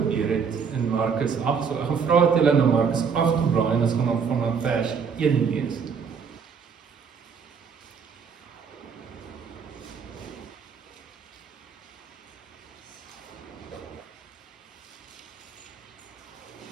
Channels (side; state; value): left; quieter; 6.2 dB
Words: het in Markus 8. So ek gaan vra dat julle na Markus 8 toe blaai, en ons gaan dan vanaf vers 1 lees.